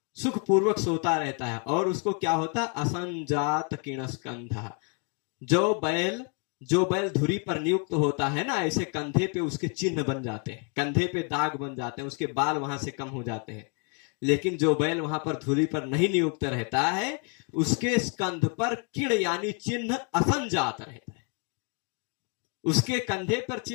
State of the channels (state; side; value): quieter; right; 38.2 dB